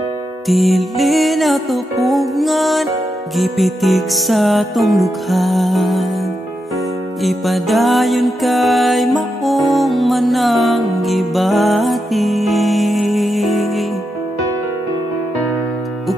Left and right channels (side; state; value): both; normal; correlation 0.85